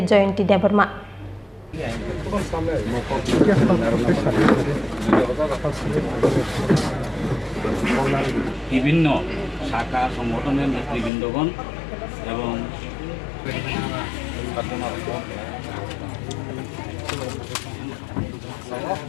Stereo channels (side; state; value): right; drops out; at 11.1 s